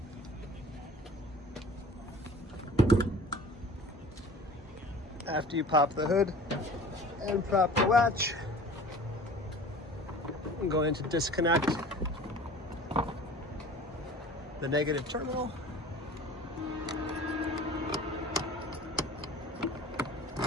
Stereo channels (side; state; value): both; normal; correlation 0.43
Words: After you pop the hood and prop the latch, I'm going to disconnect the negative terminal.